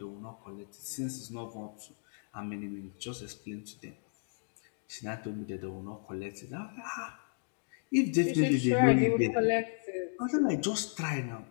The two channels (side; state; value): right; silent; digital silence